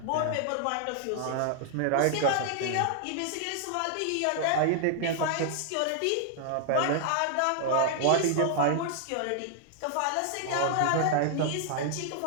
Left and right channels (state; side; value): different; both; correlation 0.00